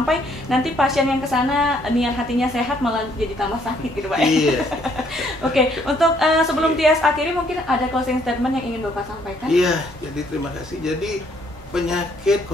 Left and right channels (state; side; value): normal; both; correlation 0.67